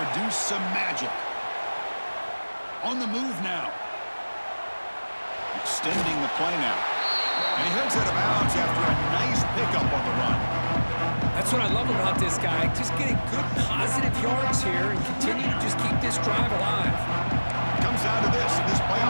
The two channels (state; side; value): inverted; both; correlation -1.00